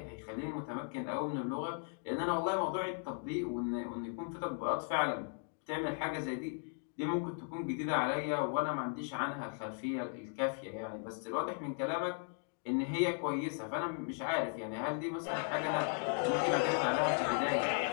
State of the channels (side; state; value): right; silent; 53 dB below the other